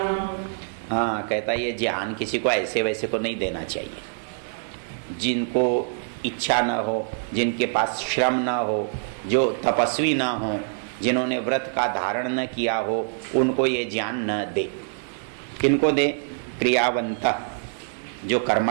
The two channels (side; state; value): left; silent; digital silence